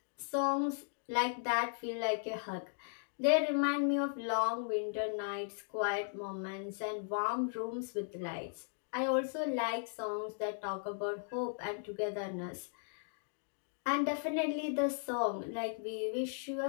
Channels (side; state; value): right; silent; digital silence